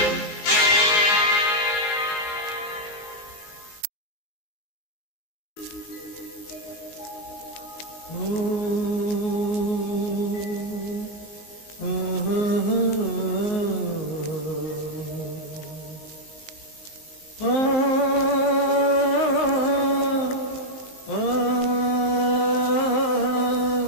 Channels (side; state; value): right; late; 19 ms